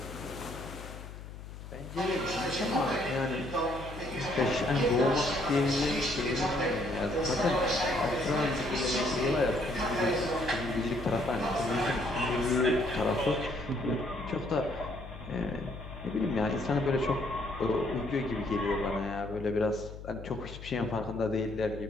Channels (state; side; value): noise; left; hum, 12 dB below the sound